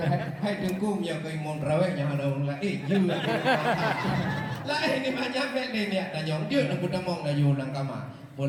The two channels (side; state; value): both; identical; correlation 1.00